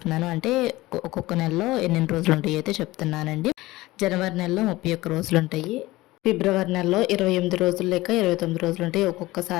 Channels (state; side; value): quieter; right; 18.8 dB